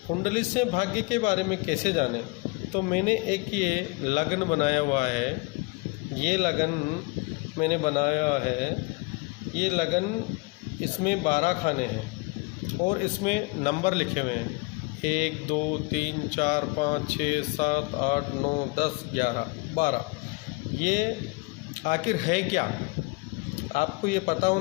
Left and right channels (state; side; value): quieter; right; 27.1 dB